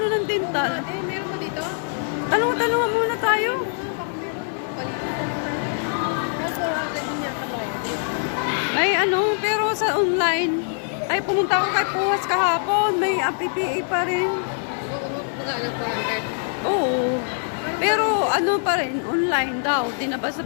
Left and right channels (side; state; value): right; silent; digital silence